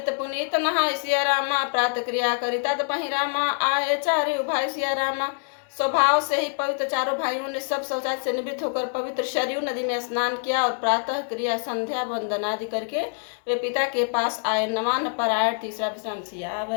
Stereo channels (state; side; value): silent; right; digital silence